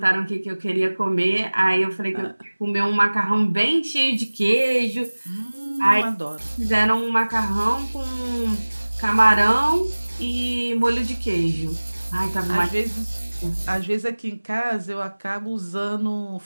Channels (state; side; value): inverted; both; correlation -1.00